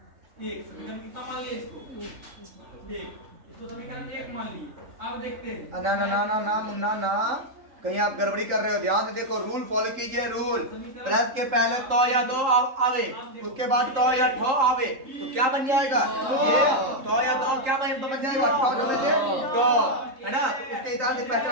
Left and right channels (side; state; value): left; late; 3.8 ms